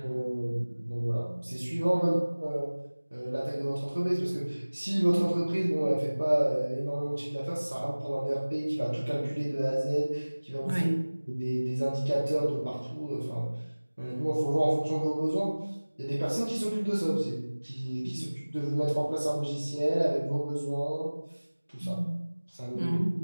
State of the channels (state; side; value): inverted; both; correlation -1.00